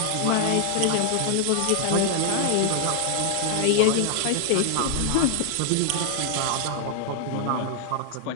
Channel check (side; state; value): both; different; correlation 0.00